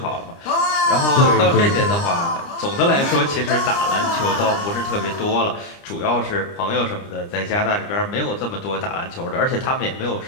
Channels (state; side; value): late; right; 29 ms